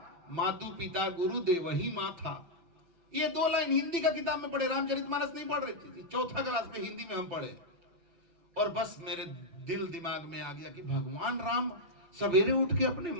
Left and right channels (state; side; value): late; left; 6.0 ms